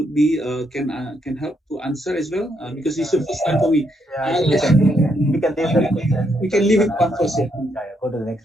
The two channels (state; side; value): normal; both; correlation 0.76